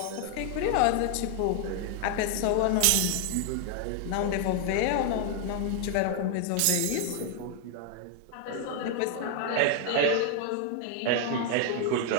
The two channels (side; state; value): both; different; correlation 0.00